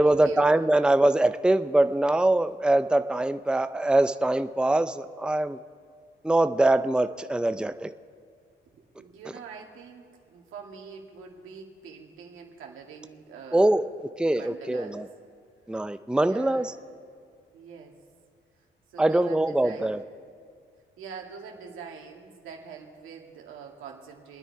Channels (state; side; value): normal; both; correlation 0.96